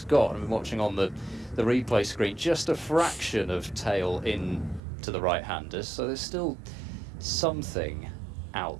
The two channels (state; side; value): drops out; left; at 4.8 s